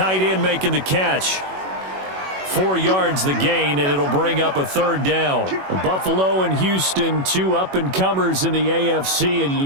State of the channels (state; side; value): late; left; 21 ms